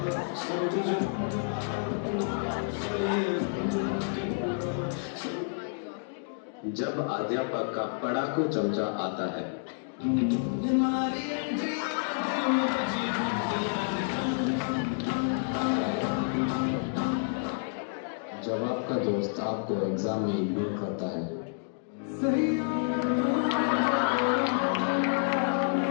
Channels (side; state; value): right; silent; digital silence